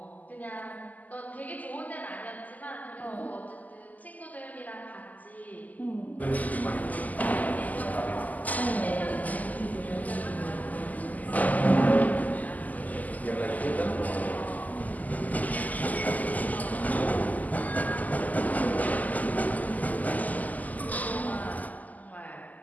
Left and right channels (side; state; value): right; late; 0.079 ms